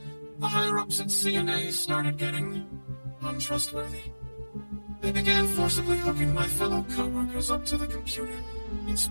the higher-ups at C&A started getting untrustworthy. They began forcibly hooking my fellow co-workers up to the computer in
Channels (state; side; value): inverted; both; correlation -1.00